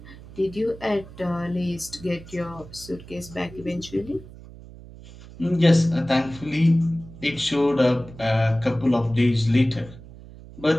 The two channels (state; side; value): noise; right; hum, 18 dB below the sound